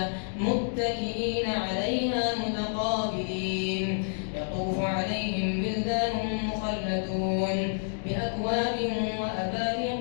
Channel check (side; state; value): right; silent; digital silence